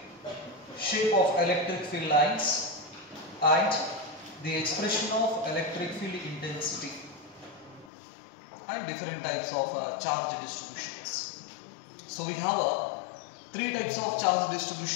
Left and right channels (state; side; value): drops out; right; at 7.9 s